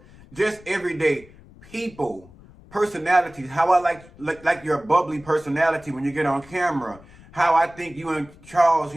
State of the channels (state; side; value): noise; left; rumble, 23 dB below the sound